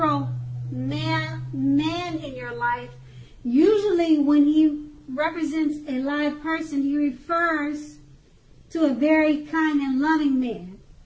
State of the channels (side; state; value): both; identical; correlation 1.00